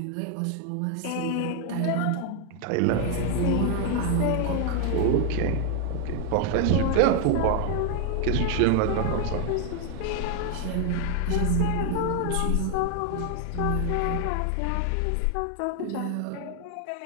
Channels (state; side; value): different; both; correlation 0.00